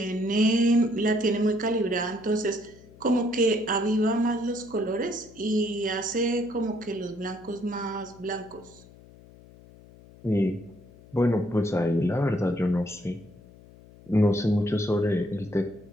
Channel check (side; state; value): left; noise; hum, 23 dB below the sound